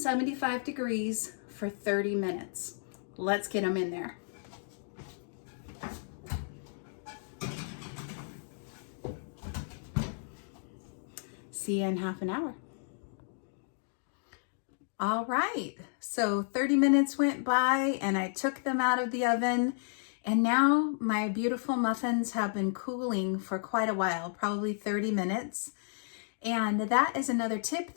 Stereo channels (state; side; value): silent; right; digital silence